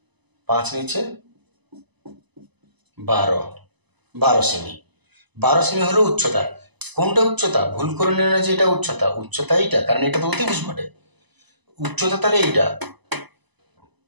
5 নিচে 12 সেমি। 12 সেমি হলো উচ্চতা। কোনটা উচ্চতা? ভুল করে নিল না যে এটা উচ্চতা, উচ্চতা এইটা, কারণ এটা তো অতিভুজ বটে। উচ্চতা তাহলে এইটা।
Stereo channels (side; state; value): left; late; 1.0 ms